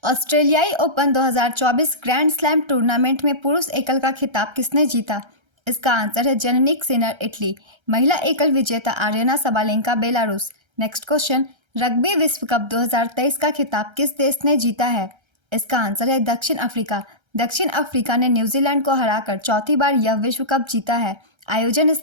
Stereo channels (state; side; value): late; left; 1.3 ms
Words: ऑस्ट्रेलियाई ओपन 2024 ग्रैंड स्लैम टूर्नामेंट में पुरुष एकल का खिताब किसने जीता? इसका आंसर है जेनिक सिनर इटली। महिला एकल विजेता Aryana Sabalenka Belarus. Next question, rugby विश्व कप 2023 का खिताब किस देश ने जीता है? इसका आंसर है दक्षिण अफ्रीका। दक्षिण अफ्रीका ने न्यूजीलैंड को हराकर चौथी बार यह विश्व कप जीता है। आयोजन